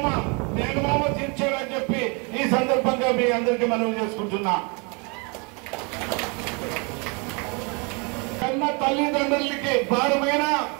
మేనమామ తీర్చాడని చెప్పి ఈ సందర్భంగా మీ అందరికీ మనవి చేసుకుంటున్నా। కన్న తల్లిదండ్రులకి భారమైన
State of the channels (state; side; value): quieter; left; 32.1 dB